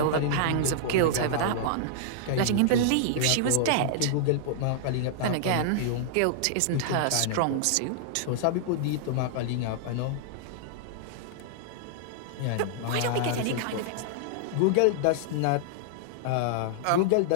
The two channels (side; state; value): both; different; correlation -0.01